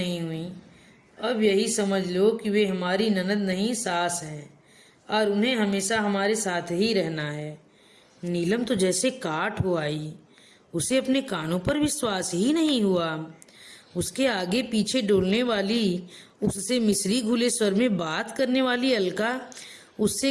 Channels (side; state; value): both; identical; correlation 1.00